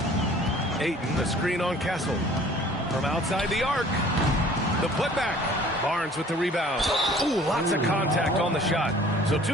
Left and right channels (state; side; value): normal; both; correlation 0.51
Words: Ayton, the screen on Castle. From outside the arc. The putback. Barnes with the rebound. Ooh, lots of contact on the shot. So